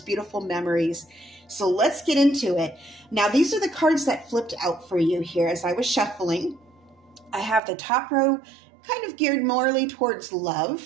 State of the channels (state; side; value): drops out; left; at 7.6 s